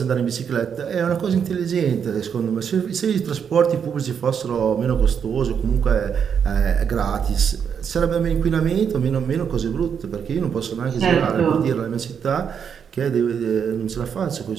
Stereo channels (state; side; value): quieter; left; 7.4 dB